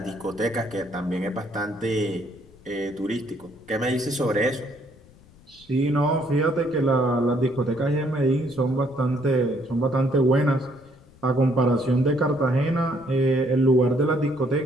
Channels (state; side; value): noise; left; rumble, 26 dB below the sound